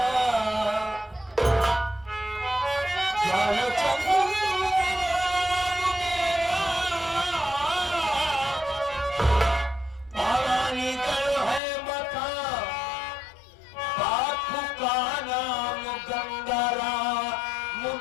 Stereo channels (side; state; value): right; drops out; at 11.6 s